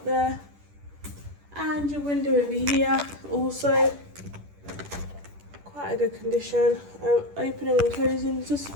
there. And your window over here, also quite a good condition. Opening and closing is just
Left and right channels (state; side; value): late; left; 10 ms